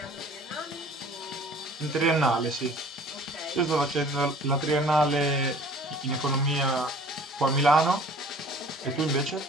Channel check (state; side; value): normal; both; correlation 0.50